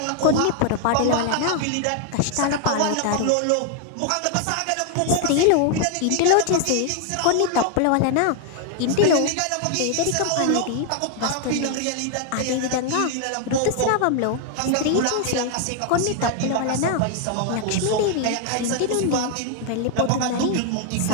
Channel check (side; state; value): both; different; correlation 0.00